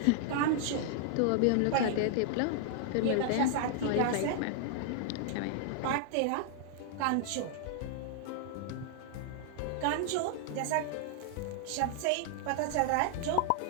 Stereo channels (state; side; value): different; both; correlation -0.01